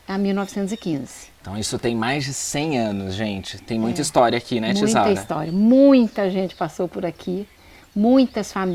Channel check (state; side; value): identical; both; correlation 1.00